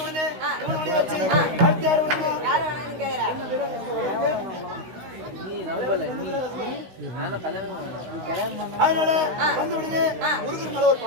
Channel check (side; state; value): left; late; 16 ms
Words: உடனே வச்சு அடுத்து யார் அதனால வந்து உடனே முருகர் மேல ஒரு